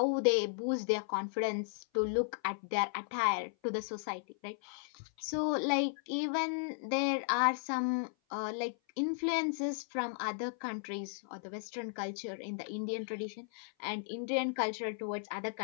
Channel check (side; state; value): right; silent; 54 dB below the other